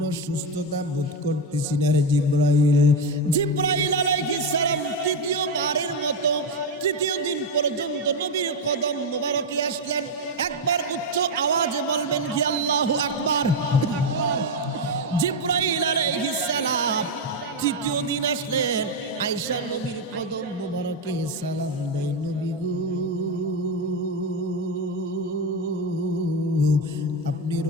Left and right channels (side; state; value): both; normal; correlation 0.07